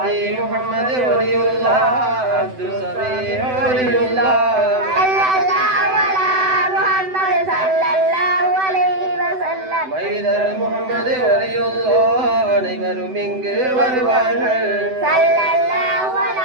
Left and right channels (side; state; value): left; late; 7.9 ms